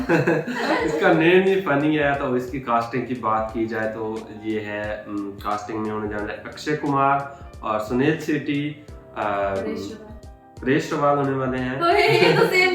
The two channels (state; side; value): identical; both; correlation 1.00